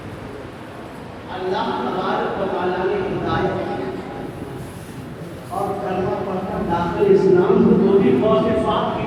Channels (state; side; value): identical; both; correlation 1.00